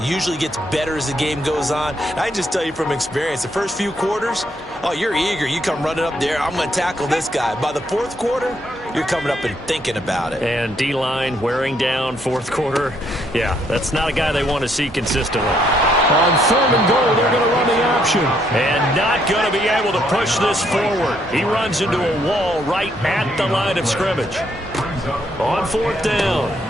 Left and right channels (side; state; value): both; normal; correlation 0.72